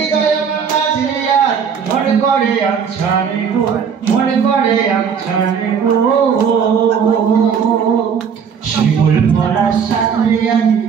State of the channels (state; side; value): quieter; left; 6.9 dB